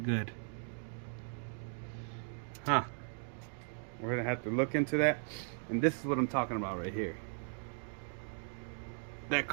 good. Huh. We're gonna have to look into that. And this is what I'm talking about right here. That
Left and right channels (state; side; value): silent; left; 53 dB below the other